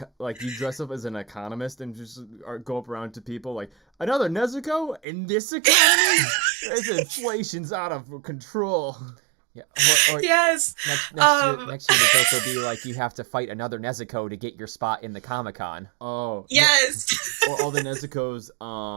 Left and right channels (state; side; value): drops out; left; at 5.0 s